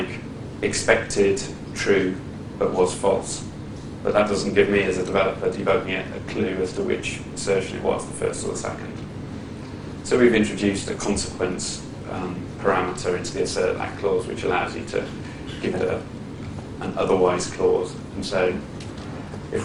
expected true but was false. But that doesn't give me, as a developer debugging it, a clue as to which assertion it was, the first or the second. So we've introduced a consequence parameter into the assert that clause, which allows you to give it an otherwise clause. And so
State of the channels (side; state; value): both; identical; correlation 1.00